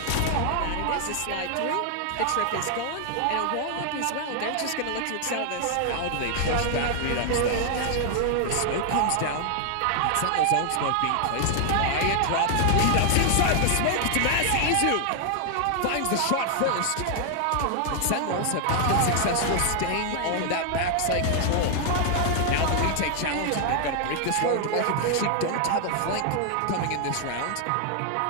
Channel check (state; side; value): different; both; correlation 0.00